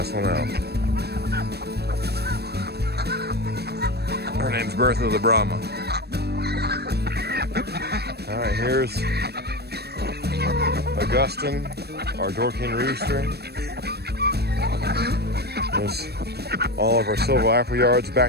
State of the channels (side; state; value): left; late; 0.47 ms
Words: one out. Her name's Bertha the Brahma. All right, here's Augustine, our Dorking rooster. There's all of our silver appleyards